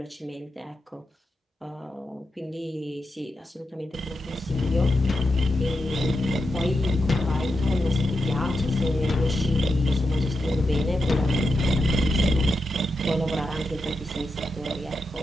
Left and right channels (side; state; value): both; normal; correlation 0.87